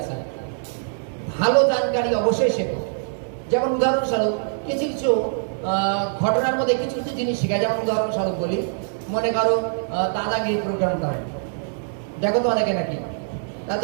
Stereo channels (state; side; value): silent; left; digital silence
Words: ভালো জানকারি অবশ্যই শেখো। যেমন উদাহরণস্বরূপ কিছু কিছু ঘটনার মধ্যে কিছু কিছু জিনিস শেখায়। যেমন উদাহরণস্বরূপ বলি, মনে করো দাদাগিরি প্রোগ্রাম করে, দেখো তো অনেকে নাকি,